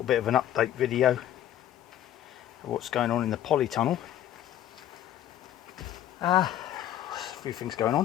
bit of an update video of what's going on in the polytunnel. A few things going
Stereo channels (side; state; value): right; quieter; 11.9 dB